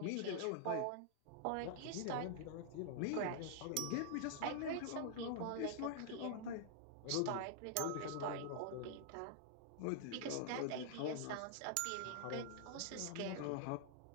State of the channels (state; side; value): different; both; correlation -0.01